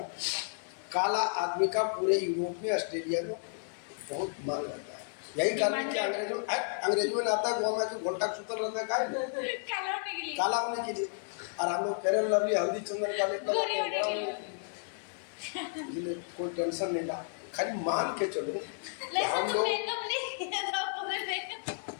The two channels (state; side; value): silent; right; 56 dB below the other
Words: काला आदमी का पूरे यूरोप में, ऑस्ट्रेलिया में बहुत मांग रहता है। यही कारण कि अंग्रेजों में आता है गोवा में कि घोटा सुतर रहता है काला होने के लिए। और हम लोग फेयर एंड लवली, हल्दी, चंदन का कोई टेंशन नहीं था, खाली मान के चलो। हम लोग